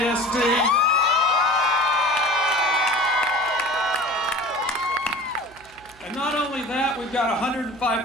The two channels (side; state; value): right; noise; hum, 26 dB below the sound